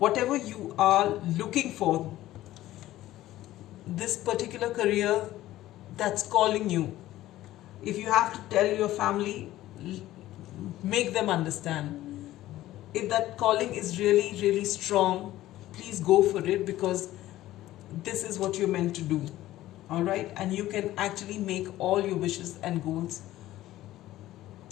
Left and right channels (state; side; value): quieter; right; 15.1 dB